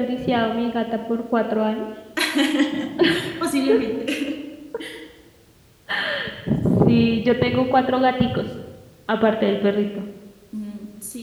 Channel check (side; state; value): both; identical; correlation 1.00